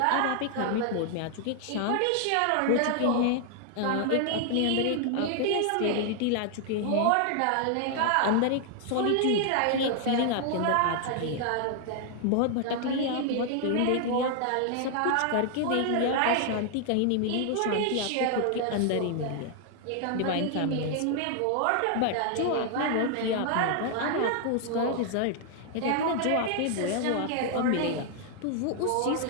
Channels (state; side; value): different; both; correlation 0.00